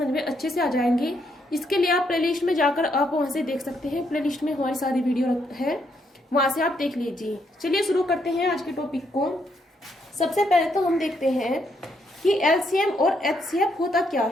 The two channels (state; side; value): normal; both; correlation 0.75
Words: में अच्छे से आ जाएंगे। इसके लिए आप प्लेलिस्ट में जाकर आप वहां से देख सकते हैं। प्लेलिस्ट में हमारी सारी वीडियो है, वहां से आप देख लीजिए। चलिए शुरू करते हैं आज के टॉपिक को। सबसे पहले तो हम देखते हैं कि एलसीएम और एचसीएफ होता क्या